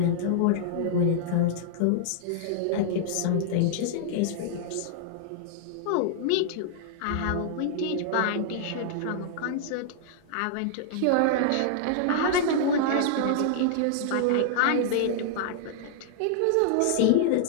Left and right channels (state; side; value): different; both; correlation -0.01